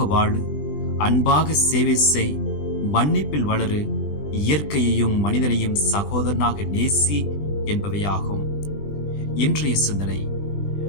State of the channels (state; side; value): late; right; 20 ms